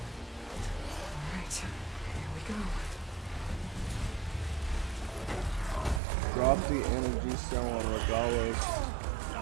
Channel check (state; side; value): drops out; left; at 6.0 s